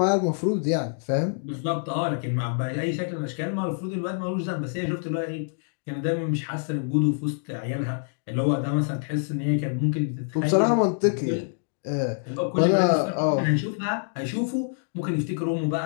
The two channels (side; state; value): right; silent; digital silence